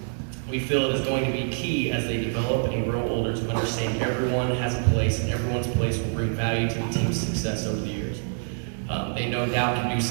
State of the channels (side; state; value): left; silent; 61 dB below the other